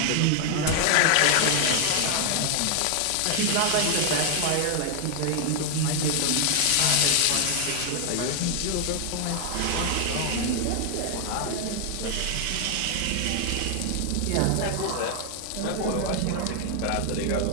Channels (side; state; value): both; different; correlation 0.00